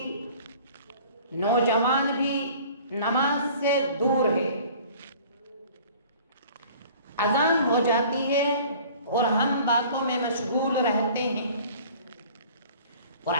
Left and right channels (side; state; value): both; inverted; correlation -0.48